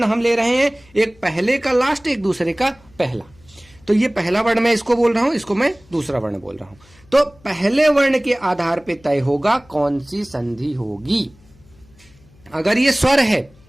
हम ले रहे हैं, एक पहले का लास्ट, एक दूसरे का पहला। तो ये पहला वर्ण मैं इसको बोल रहा हूं, इसको मैं दूसरा वर्ण बोल रहा हूं। तो पहले वर्ण के आधार पे तय होगा कौन सी संधि होगी। अगर ये स्वर है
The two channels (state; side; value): noise; left; hum, 28 dB below the sound